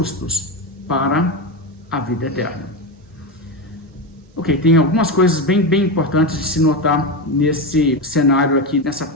para a vida eterna. Ok, tem algumas coisas bem importantes de se notar nesse cenário aqui, nessa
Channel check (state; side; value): normal; both; correlation 0.15